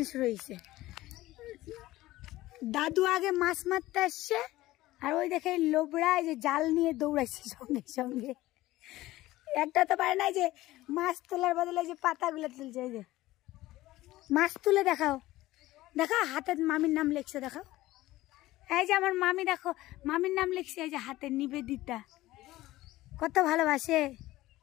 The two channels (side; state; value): right; quieter; 17.0 dB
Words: শুরু হয়েছে। দাদু আগে মাছ মারতে আসছে, আর ওই দেখে লোবরা এই যে জাল নিয়ে দৌড়াইছে সঙ্গে সঙ্গে। একটা তো পারে না যে মাছ তোলার বদলে যে পাতাগুলো তুলছে। এই যে মাছ তুলে দেখাও, দেখাও হাতে মামির নাম লিখছে, দেখাও। এই যে আমার মামি, দেখো মামির নাম লিখছে, এই যে হাতে নিবেদিতা, কত ভালোবাসে।